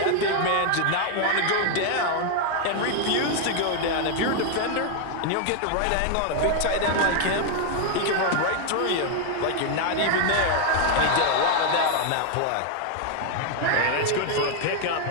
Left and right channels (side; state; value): both; different; correlation 0.00